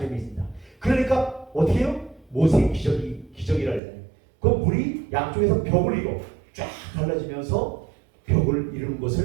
내밀습니다. 그러니까 어떻게 해요? 모세의 기적이라 하잖아요. 그 물이 양쪽에서 벽을 이루어 쫙 갈라지면서 벽을 이루는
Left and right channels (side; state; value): left; drops out; at 3.8 s